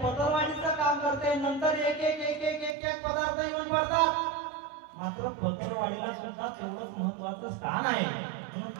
पदरवाढीचं काम करते. नंतर एक एक एक एक एक एक पदार्थ येऊन पडतात. मात्र पदरवाढीला सुद्धा तेवढंच महत्वाचं स्थान आहे. म्हणून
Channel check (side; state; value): left; drops out; at 2.8 s